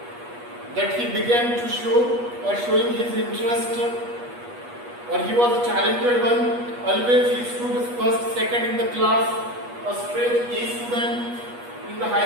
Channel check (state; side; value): late; left; 8.3 ms